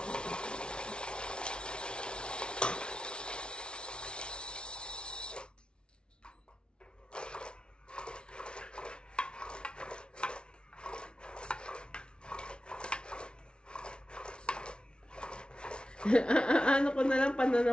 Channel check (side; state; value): right; late; 0.056 ms